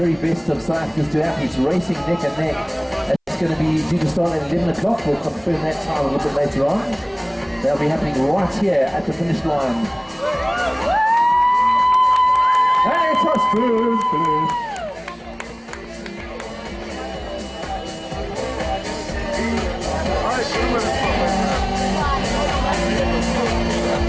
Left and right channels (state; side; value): identical; both; correlation 1.00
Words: best of South Africa's duathletes racing neck and neck. It's going to be due to start at 11 o'clock. We'll confirm that time a little bit later on. They'll be happening right here at the finish line. Hey, it's us, food.